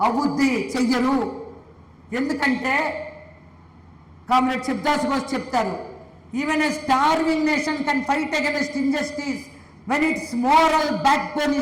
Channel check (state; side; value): identical; both; correlation 1.00